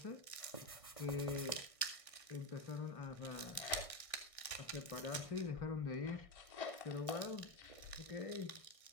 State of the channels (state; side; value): late; right; 1.6 ms